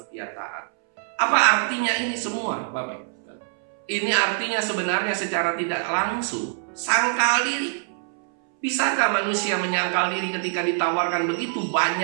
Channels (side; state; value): left; silent; 62 dB below the other